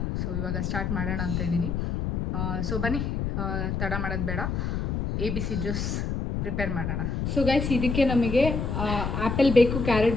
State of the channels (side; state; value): left; noise; rumble, 1 dB below the sound